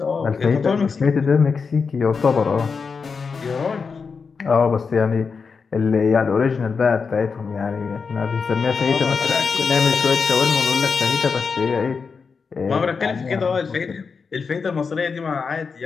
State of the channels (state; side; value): quieter; right; 5.3 dB